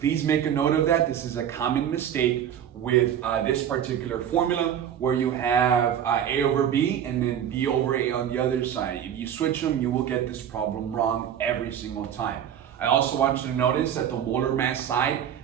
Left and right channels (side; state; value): left; quieter; 9.5 dB